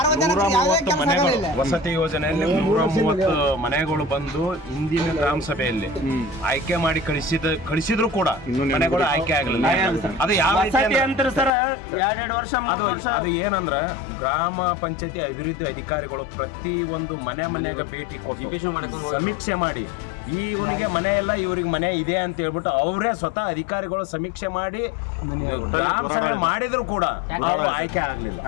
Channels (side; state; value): right; drops out; at 11.5 s